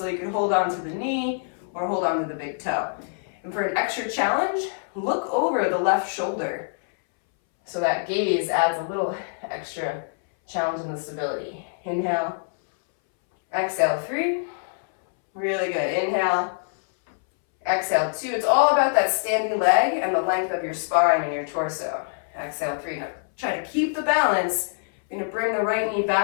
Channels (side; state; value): right; silent; 61 dB below the other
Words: you can hold on to the knee or hold on to the big toe. And for an extra challenge, look over the left shoulder. So that gaze adds a little extra challenge in the stability. Inhale, exhale, 3. Really good. Inhale, exhale, 2. It's all about that standing leg and the length of your spine and your torso. Exhale, 3. Now try to keep the balance. You're gonna bring the right knee